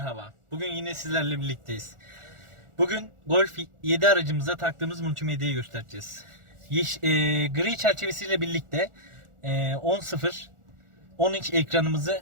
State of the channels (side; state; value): left; late; 1.4 ms